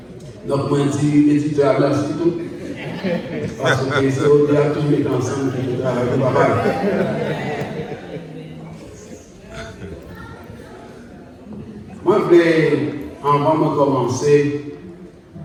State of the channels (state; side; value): identical; both; correlation 1.00